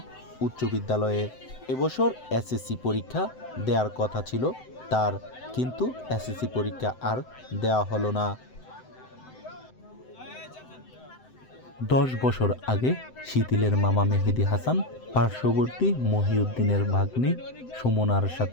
উচ্চ বিদ্যালয়ে। এবছর SSC পরীক্ষা দেওয়ার কথা ছিল তার, কিন্তু SSC পরীক্ষা আর দেওয়া হলো না। 10 বছর আগে শিথিলের মামা মেহেদি হাসান পার্শ্ববর্তী মহিউদ্দিনের ভাগ্নি সুমনার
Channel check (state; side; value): late; right; 7.8 ms